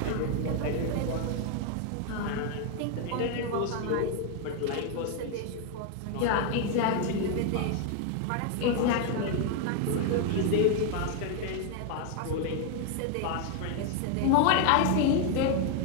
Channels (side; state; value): both; different; correlation 0.00